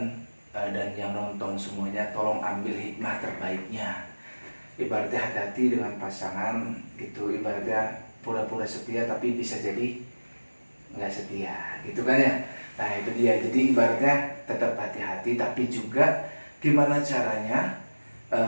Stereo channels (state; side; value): inverted; both; correlation -1.00